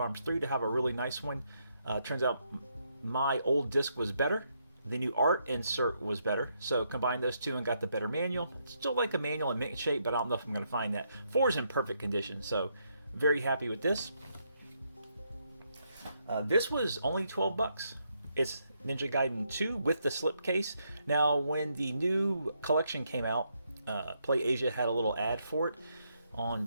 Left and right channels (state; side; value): inverted; both; correlation -0.77